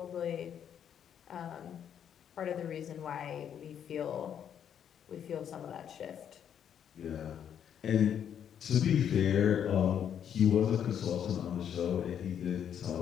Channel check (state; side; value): quieter; right; 8.9 dB